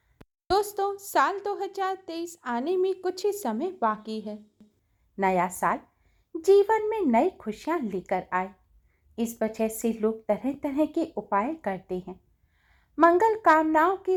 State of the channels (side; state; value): both; identical; correlation 1.00